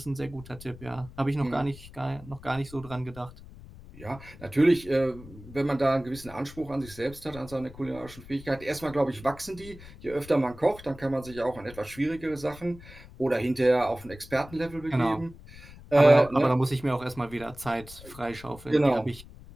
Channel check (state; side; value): noise; left; rumble, 18 dB below the sound